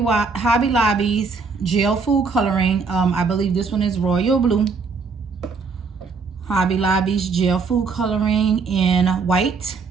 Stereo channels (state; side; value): quieter; left; 4.7 dB